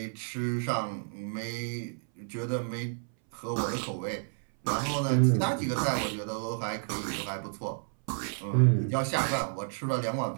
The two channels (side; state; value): left; silent; 57 dB below the other